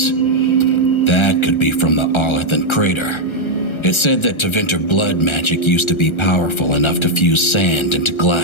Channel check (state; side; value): late; right; 1.3 ms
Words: That could be from the Arlethan crater. It said that Tevinter blood magic used to be powerful enough to fuse sand into